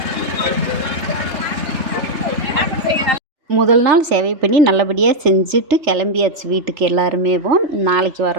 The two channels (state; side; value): late; left; 3.3 ms